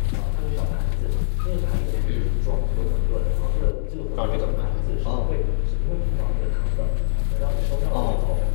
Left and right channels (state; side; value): silent; right; 60 dB below the other